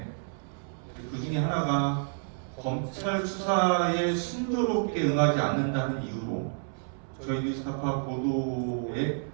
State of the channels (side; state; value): left; silent; 58 dB below the other